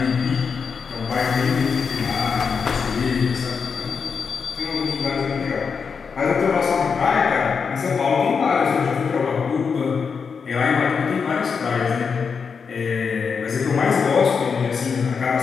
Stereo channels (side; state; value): right; quieter; 5.8 dB